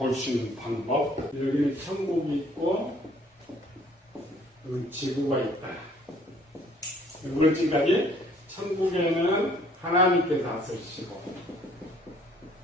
수 있는 방법. 여기는 천국이 있고 여기 지구가 있다. 우리 지금까지 천국에는 하나님께서 다스리시고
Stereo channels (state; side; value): normal; both; correlation 0.59